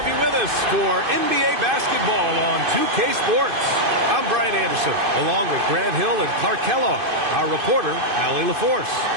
you with us for NBA basketball on 2K Sports. I'm Brian Anderson, along with Grant Hill and Clark Kellogg, our reporter, Allie LaForce.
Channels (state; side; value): late; left; 2.5 ms